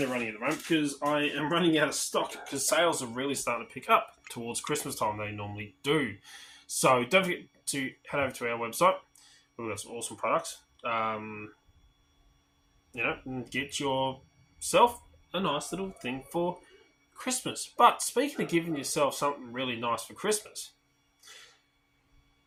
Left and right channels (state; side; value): identical; both; correlation 1.00